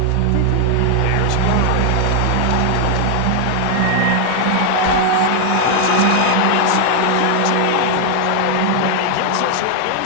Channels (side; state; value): both; different; correlation 0.00